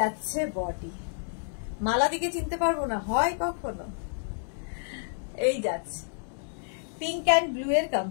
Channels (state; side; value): silent; right; digital silence